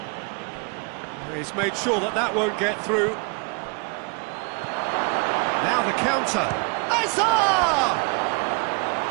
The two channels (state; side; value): quieter; left; 34.2 dB